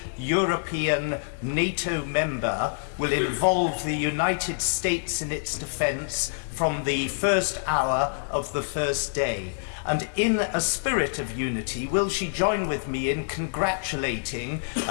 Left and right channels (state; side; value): silent; right; digital silence